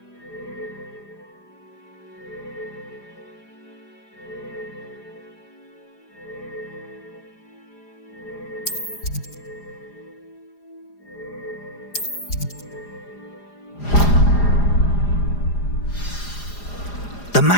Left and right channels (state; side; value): late; right; 4.9 ms